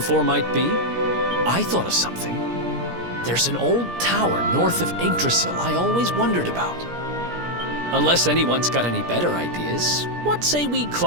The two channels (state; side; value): late; left; 17 ms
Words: might be? I thought of something. There's an old tower north of Yggdrasil I always wondered about. Unless anyone's got any better ideas, what say we